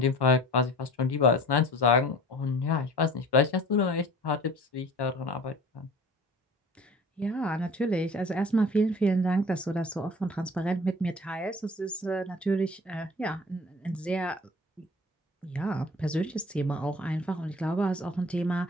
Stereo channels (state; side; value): normal; both; correlation 0.44